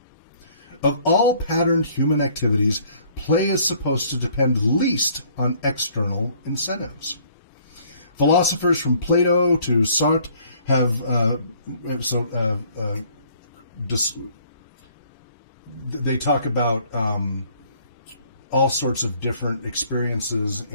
Of all patterned human activities, play is supposed to depend least on external incentives. Philosophers from Plato to Sartre they talk about all sorts of different experiences,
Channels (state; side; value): inverted; both; correlation -0.59